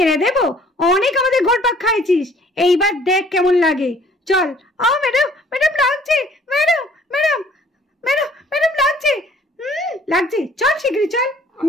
দেবো? অনেক আমাদের ঘোরপাক খাইছিস, এইবার দেখ কেমন লাগে। চল। ম্যাডাম ম্যাডাম লাগছে, ম্যাডাম ম্যাডাম ম্যাডাম ম্যাডাম লাগছে, লাগছে, চল শিগগিরই চল।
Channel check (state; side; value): normal; both; correlation 0.57